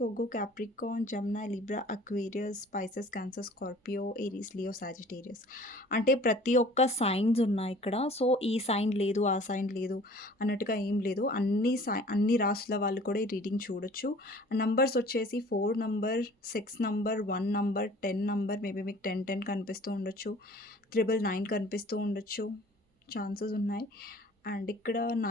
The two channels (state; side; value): normal; both; correlation 0.49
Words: ఒగ్గు, Capricorn, Gemini, Libra, Aquarius, Pisces, Cancer, Scorpio, Aries, Leo, Sagittarius. అంటే ప్రతి ఒక్క science ఉన్నాయి ఇక్కడ. సో, ఈ సైన్ లేదు, ఆ సైన్ లేదు అన్నట్టుగా ఏం లేదు. అన్ని రాసుల వాళ్ళు కూడా ఈ రీడింగ్ చూడొచ్చు. నంబర్స్ వచ్చేసి 4 number, 6 number, 1 number, 10 number, maybe మీకు 10, 10 కనిపిస్తూ ఉండొచ్చు. 999 కనిపిస్తూ ఉండొచ్చు. ఛాన్సెస్ ఉన్నాయి. అండ్ ఇక్కడ